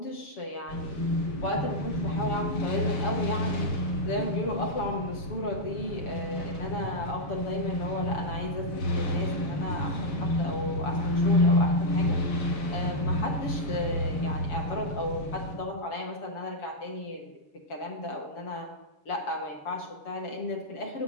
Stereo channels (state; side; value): late; right; 7.1 ms